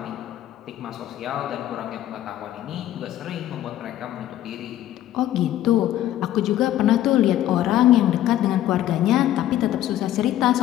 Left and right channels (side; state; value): right; quieter; 12.9 dB